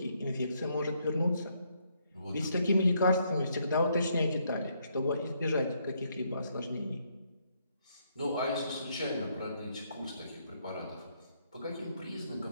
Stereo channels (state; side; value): inverted; both; correlation -0.73